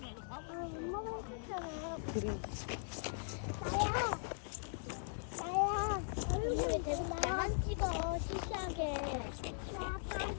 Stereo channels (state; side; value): silent; right; 51 dB below the other